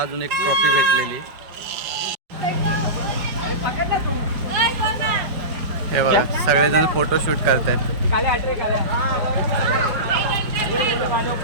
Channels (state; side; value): late; left; 5.2 ms